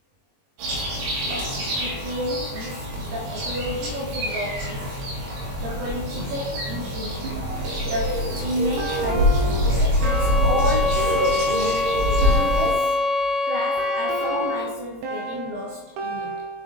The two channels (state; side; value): late; left; 22 ms